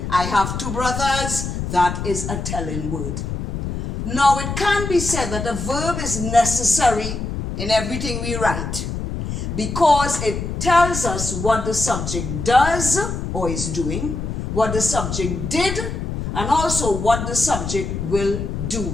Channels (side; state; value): left; noise; rumble, 4 dB below the sound